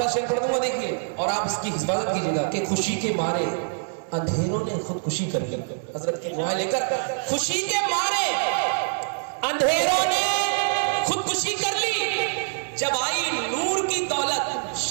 شعر پڑھ دوں گا، دیکھیے اور آپ اس کی حفاظت کیجیے گا کہ خوشی کے مارے اندھیروں نے خودکشی کر لی۔ حضرت کی دعائیں لے کر، خوشی کے مارے اندھیروں نے خودکشی کر لی، جب آئی نور کی دولت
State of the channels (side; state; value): left; silent; digital silence